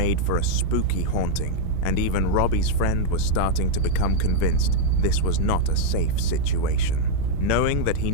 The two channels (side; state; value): both; different; correlation 0.00